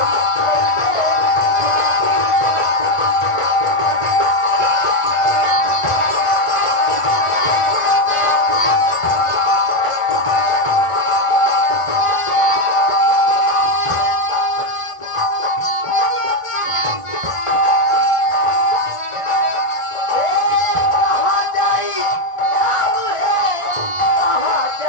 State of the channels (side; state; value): right; late; 1.5 ms